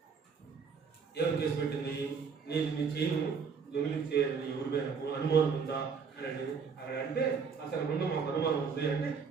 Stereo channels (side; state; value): left; quieter; 5.8 dB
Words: ఏం కేసు పెట్టింది? నీ చేయను దొంగిలించే ఎవరి మీద అనుమానం ఉందా అని అక్కడ అంటే అసలు ముందు మాకు అనుమానం ఉంది అంటే